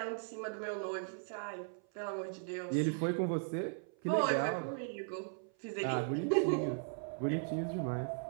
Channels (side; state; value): left; silent; 53 dB below the other